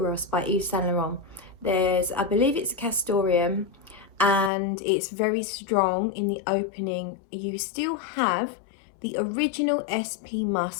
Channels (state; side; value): drops out; right; at 4.5 s